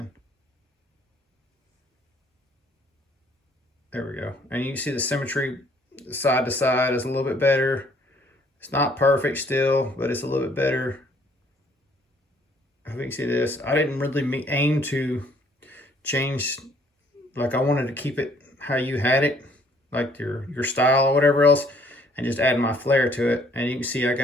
There we go. And you can see the symmetry side to side is a little bit better. It's not perfect still, but it's a little bit better. I think you can see this. I didn't really aim to change, like I wanted to keep it how you had it, like your style or whatever else, and just add my flair to it. And you can see I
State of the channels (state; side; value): normal; both; correlation 0.62